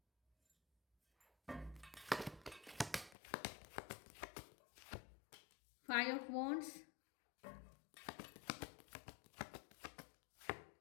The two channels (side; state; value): right; drops out; at 3.2 s